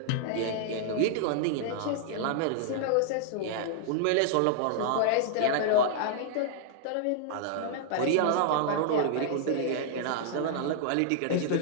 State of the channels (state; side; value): different; both; correlation -0.01